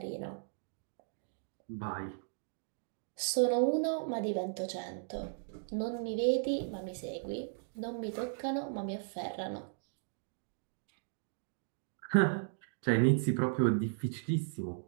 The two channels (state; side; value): silent; left; digital silence